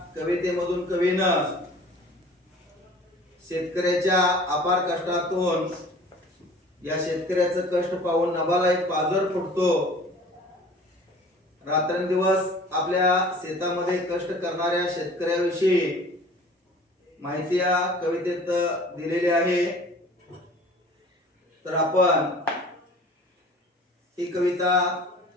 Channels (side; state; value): both; normal; correlation 0.46